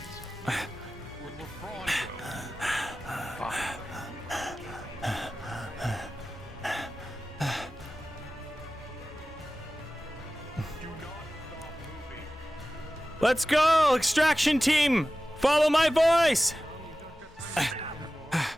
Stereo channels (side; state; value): both; normal; correlation 0.95